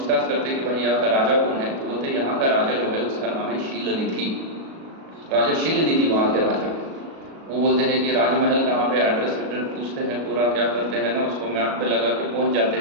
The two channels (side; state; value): left; late; 37 ms